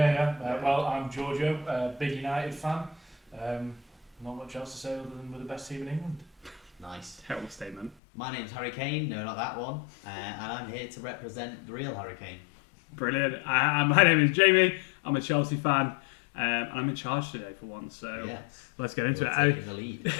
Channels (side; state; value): right; drops out; at 8.0 s